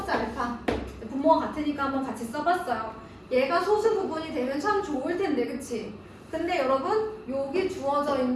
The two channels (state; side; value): identical; both; correlation 1.00